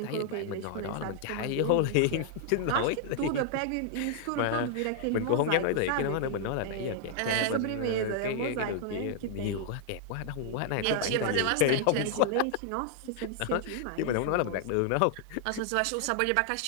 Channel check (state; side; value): different; both; correlation 0.00